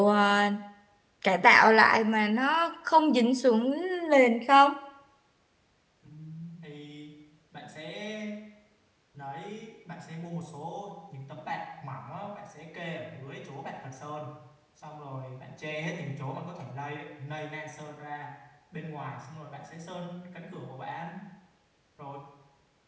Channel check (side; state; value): both; identical; correlation 1.00